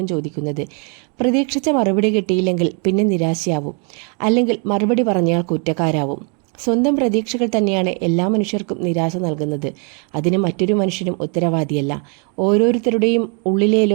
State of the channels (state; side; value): quieter; left; 37.4 dB